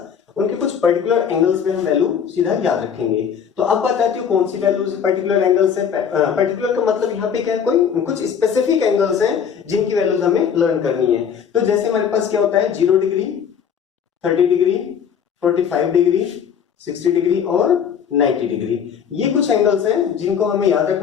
उनके कुछ पर्टिकुलर एंगल्स पे हम वैल्यू सीधा याद रखेंगे। तो अब बात आती है कौन सी वैल्यूज पर्टिकुलर एंगल्स है। पर्टिकुलर का मतलब यहाँ पे क्या है, कोई कुछ स्पेसिफिक एंगल्स हैं जिनकी वैल्यूज हमें लर्न करनी है। तो जैसे हमारे पास क्या होता है 0 डिग्री, 30 डिग्री, 45 डिग्री, 60 डिग्री और 90 डिग्री। ये कुछ एंगल्स हैं जिनको हमें याद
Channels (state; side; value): quieter; right; 7.6 dB